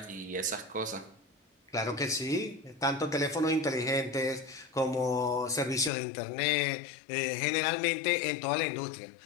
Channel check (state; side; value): drops out; right; at 5.9 s